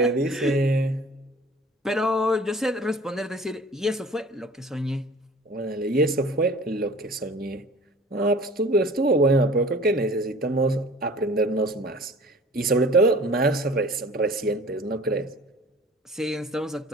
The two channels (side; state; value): both; normal; correlation 0.46